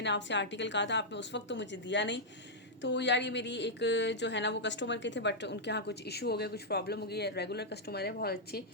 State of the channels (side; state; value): both; normal; correlation -0.07